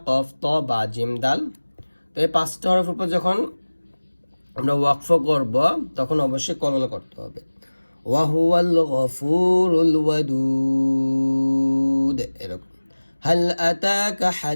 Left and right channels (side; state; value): both; inverted; correlation -1.00